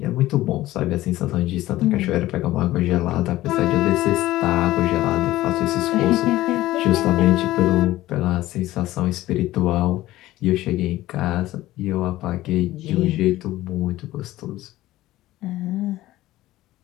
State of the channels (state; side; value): quieter; right; 16.2 dB